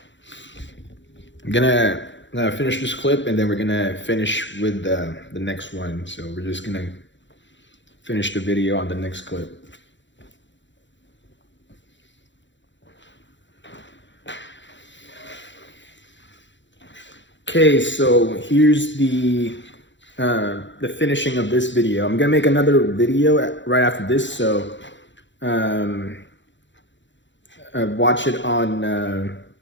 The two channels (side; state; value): right; late; 0.54 ms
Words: I'm gonna finish this clip, and then we're gonna finish with the next one. So we're just gonna finish the video on the next clip. Okay, so here's the finishing of this video. I'm gonna make another video right after this, so watch it on